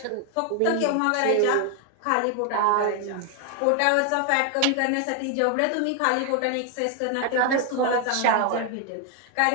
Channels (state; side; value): different; both; correlation 0.01